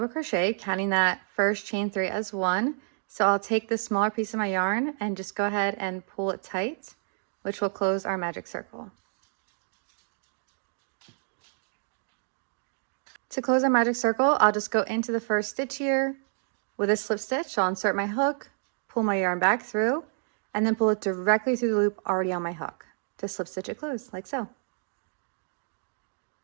crochet, counting that first chain 3 as 1. So I'll take the smaller piece of my yarn and just go ahead and pull it tight, which will close our magic circle. To close our magic circle, I'll just go into the first stitch here. With a slip stitch, I'll insert my hook, pull my yarn back through, and then pull it directly through the loop already on my hook to slip stitch it closed, like so.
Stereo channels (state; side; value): silent; left; digital silence